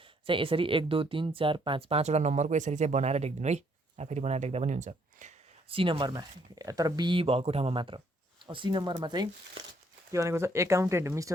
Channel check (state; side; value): normal; both; correlation 0.68